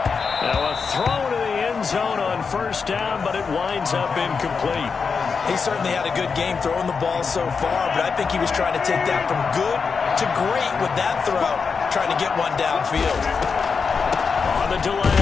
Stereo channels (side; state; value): right; quieter; 5.4 dB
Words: Now a throw to the end zone on first down, but it winds up incomplete. He certainly had a good game throwing the ball so far, but I think he was trying to take that from good to great with that throw, trying to get one downfield. On the